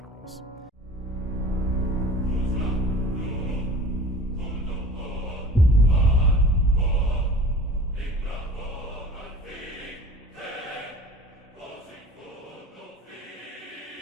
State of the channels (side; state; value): both; normal; correlation 0.42